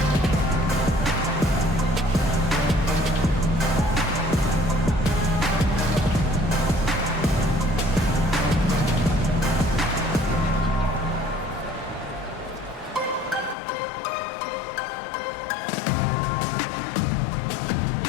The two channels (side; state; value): right; drops out; at 13.6 s